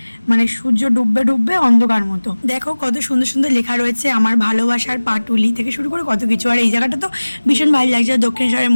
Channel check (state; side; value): inverted; both; correlation -1.00